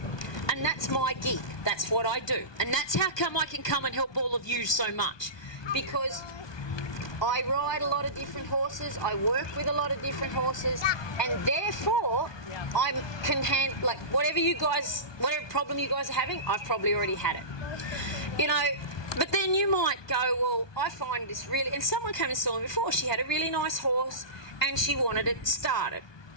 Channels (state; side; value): late; right; 1.2 ms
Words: And that's my gig. That's what I do. And that's how come I can come and help all of you so much. Because I ride a lot of different horses, I work with a lot of different horses, and therefore I can handle, like, whatever problem you guys are having, I've probably already had it. You know, but then you might go, well, I find this really, and someone came and saw me before, she had a really nice horse and she wanted it started.